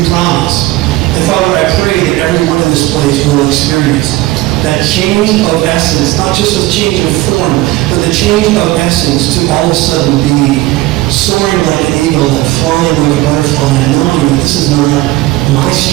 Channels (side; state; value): left; quieter; 17.8 dB